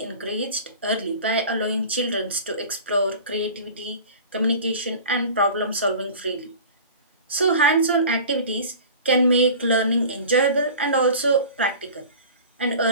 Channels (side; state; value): both; inverted; correlation -0.39